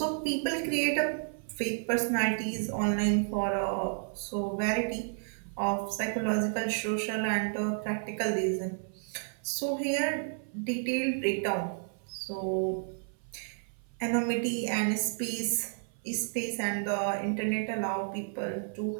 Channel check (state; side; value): silent; left; 57 dB below the other